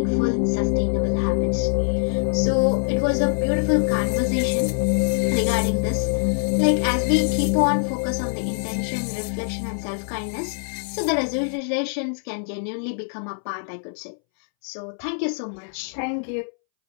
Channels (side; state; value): right; silent; 63 dB below the other